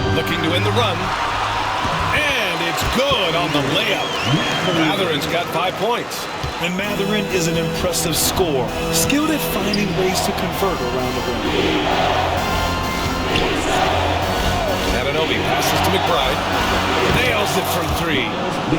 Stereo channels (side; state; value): both; identical; correlation 1.00